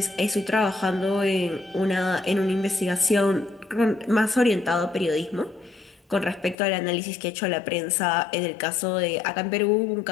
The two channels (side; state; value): right; drops out; at 6.6 s